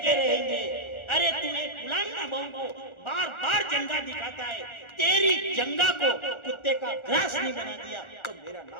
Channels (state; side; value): late; right; 1.4 ms